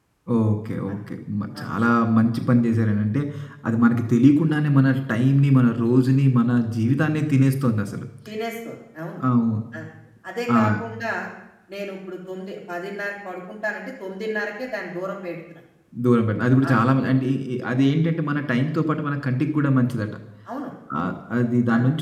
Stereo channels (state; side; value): identical; both; correlation 1.00